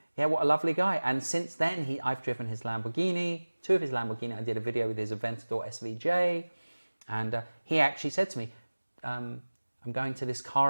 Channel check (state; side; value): inverted; both; correlation -1.00